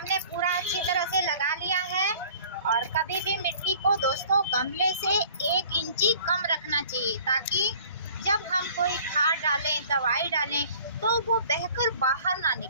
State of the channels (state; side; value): inverted; both; correlation -0.51